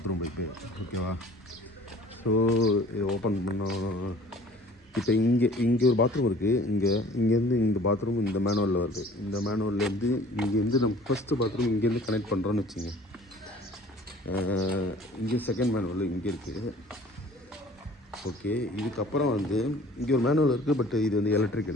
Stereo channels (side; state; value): both; normal; correlation 0.50